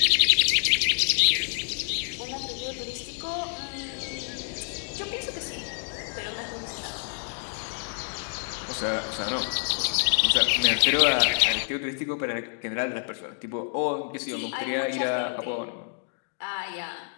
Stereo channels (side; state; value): right; silent; 56 dB below the other